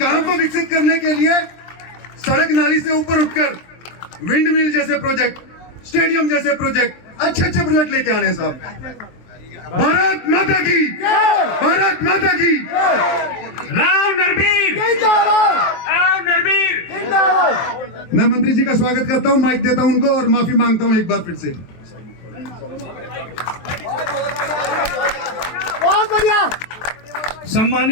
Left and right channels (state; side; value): late; right; 23 ms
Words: को विकसित करने के लिए सड़क नाली से ऊपर उठकर विंड मिल जैसे प्रोजेक्ट, स्टेडियम जैसे प्रोजेक्ट, अच्छे अच्छे प्रोजेक्ट लेके आने साहब। भारत माता की, भारत माता की। राव नरबीर, राव नरबीर। मैं मंत्री जी का स्वागत करता हूं, माइक देता हूं उनको और माफी मांगता हूं एक बार फिर से। बहुत बढ़िया।